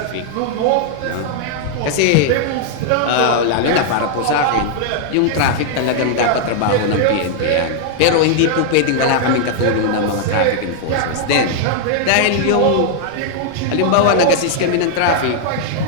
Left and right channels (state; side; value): different; both; correlation -0.01